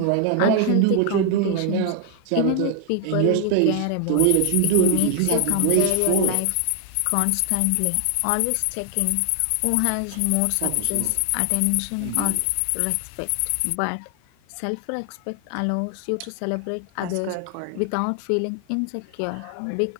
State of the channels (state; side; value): different; both; correlation 0.00